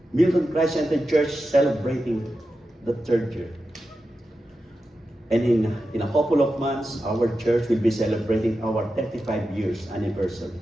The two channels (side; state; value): both; normal; correlation 0.91